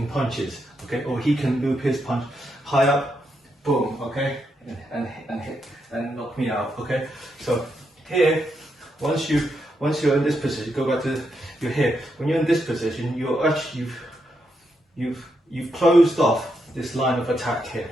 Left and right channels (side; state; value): both; normal; correlation 0.82